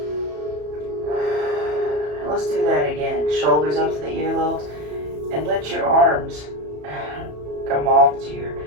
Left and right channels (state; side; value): late; left; 33 ms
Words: And let's do that again. Shoulders up to the earlobes, and let your arms come off to your